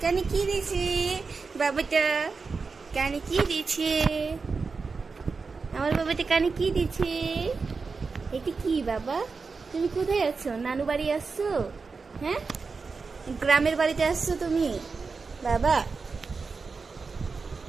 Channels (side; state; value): left; quieter; 4.6 dB